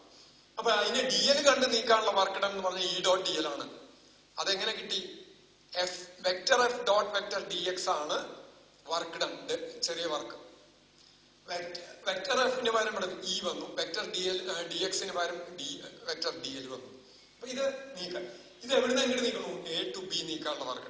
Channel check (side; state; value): both; identical; correlation 1.00